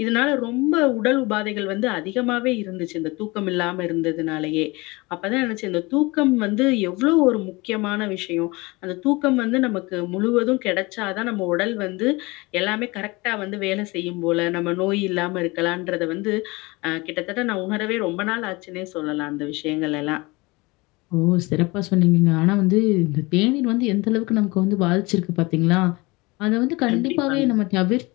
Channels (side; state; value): right; quieter; 24.0 dB